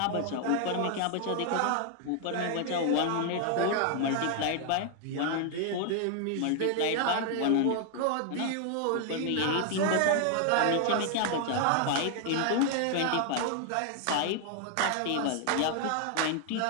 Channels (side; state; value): both; different; correlation 0.00